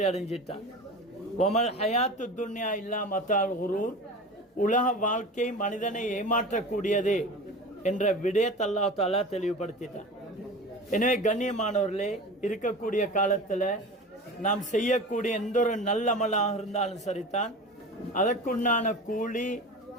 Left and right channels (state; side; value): normal; both; correlation 0.33